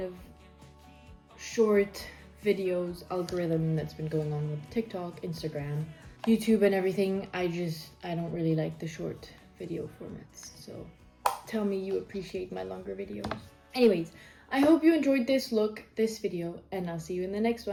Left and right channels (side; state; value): both; identical; correlation 1.00